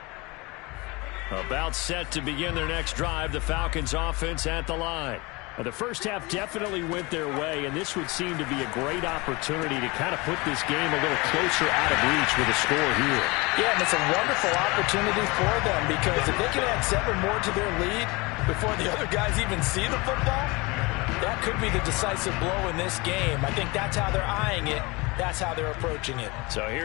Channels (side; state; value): right; quieter; 25.1 dB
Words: About set to begin their next drive. The Falcons offense at the line. The first half definitely went their way, and this would seem to be a great opportunity to kind of put this game a little closer out of reach with a score here. Yeah, and it's a wonderful opportunity for them because if they can add 7 more to their lead before the other guys even see the football, that could be the decisive blow in this game. I think that's how they're eyeing it. That's how they're approaching it. So